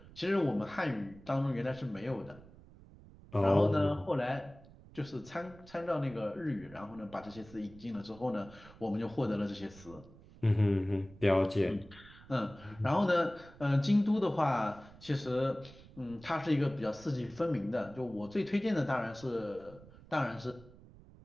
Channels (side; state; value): right; noise; rumble, 21 dB below the sound